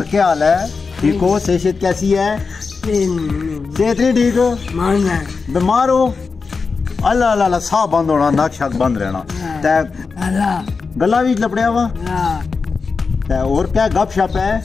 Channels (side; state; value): right; quieter; 4.7 dB